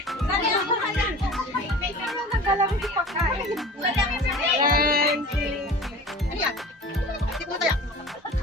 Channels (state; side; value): normal; both; correlation 0.39